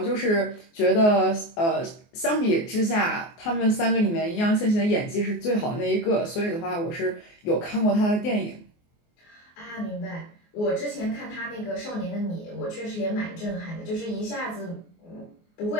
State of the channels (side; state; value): right; late; 24 ms